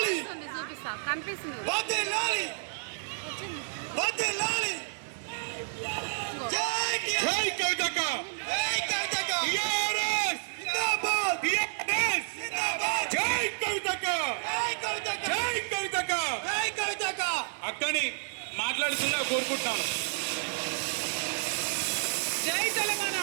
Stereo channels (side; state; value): left; silent; digital silence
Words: చూపిస్తా కనిపిస్తుంది వదిలాలి వదిలాలి జై జై కవితక్క జై కవితక్క టిఆర్ఎస్ జిందాబాద్ టిఆర్ఎస్ జిందాబాద్ జై కవితక్క జై కవితక్క జై కవితక్క జై కవితక్క అక్కని మాట్లాడుతున్నా కోరుకుంటున్నాను. జై